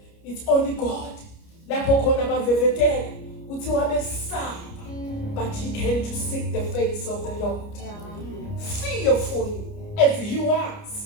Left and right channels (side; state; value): right; late; 29 ms